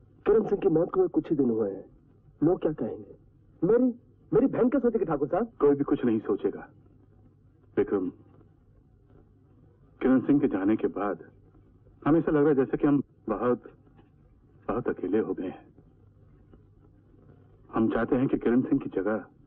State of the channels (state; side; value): identical; both; correlation 1.00